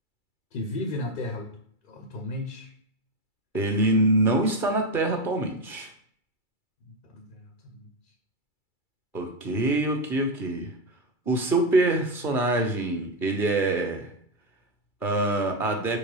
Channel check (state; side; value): late; right; 2.3 ms